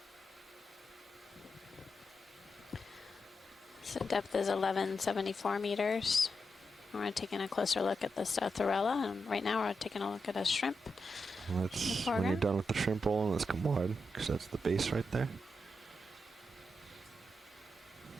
So depth is 1174 meters. We're taking a closer look at this Thorella, and right now we're taking a look at a shrimp. Let's, when you're done with the shrimp rolling, let's come wide, because that's the base right there.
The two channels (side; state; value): both; normal; correlation 0.86